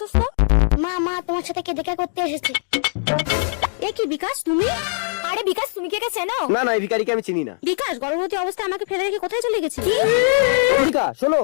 মা মা তোমার সাথে কে দেখা করতে এসেছে? এ কি বিকাশ তুমি? আরে বিকাশ তুমি কে চেনো? না না, এই ভিখারিকে আমি চিনি না। বিকাশ গর্ভবতী অবস্থায় আমাকে ফেলে রেখে কোথায় চলে গেছি? অম্বিকা শোনো,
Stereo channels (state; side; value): silent; right; digital silence